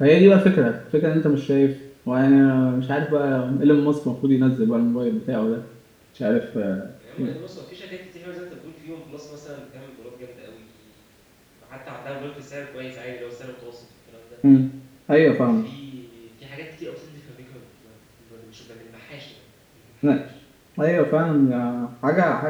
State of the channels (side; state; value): both; identical; correlation 1.00